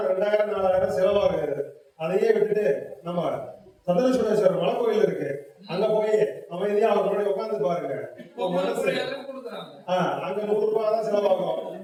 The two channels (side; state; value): both; identical; correlation 1.00